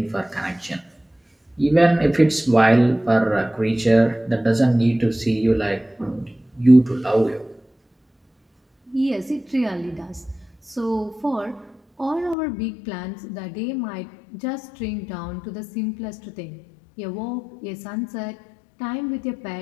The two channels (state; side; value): drops out; right; at 12.4 s